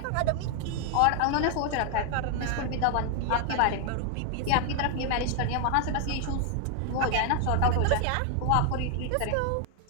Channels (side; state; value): both; different; correlation 0.00